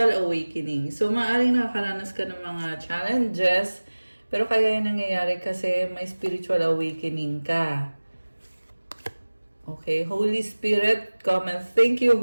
awakening. So, maaaring nakakaranas ka ng mga challenges, pero kaya yan nangyayari kasi may spiritual awakening ka. Okay, Holy Spirit, comment. Thank you,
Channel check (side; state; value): both; inverted; correlation -1.00